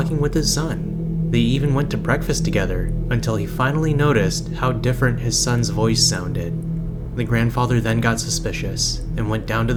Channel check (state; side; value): identical; both; correlation 1.00